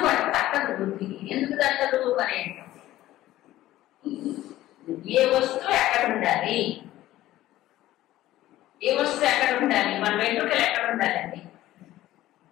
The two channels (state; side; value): quieter; right; 15.0 dB